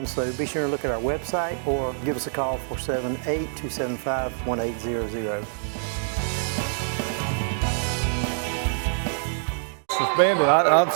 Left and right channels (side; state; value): left; silent; digital silence